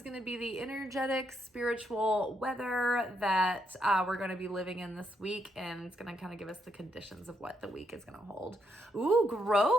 going to be the energetic, spiritual weather that we're going to be living in this week, and it's going to kind of give us the conditions of what the week is going to hold. Ooh,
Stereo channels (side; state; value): both; normal; correlation 0.77